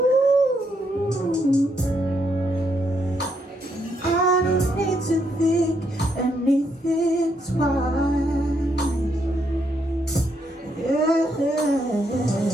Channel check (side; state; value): both; normal; correlation 0.76